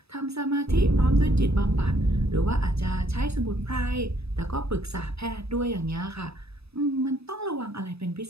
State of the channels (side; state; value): left; late; 0.78 ms